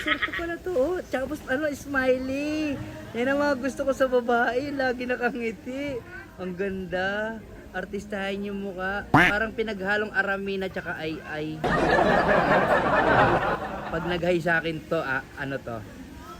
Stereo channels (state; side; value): identical; both; correlation 1.00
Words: pa pala to, oh. Tapos, smiley. Yan ang mga gusto ko sa babae. Lagi nakangiti. Ang ganda. Artistahin yung mukha. Parang pinaghalong Aramina tsaka ay. Pag nag-hi sa akin to, ano to?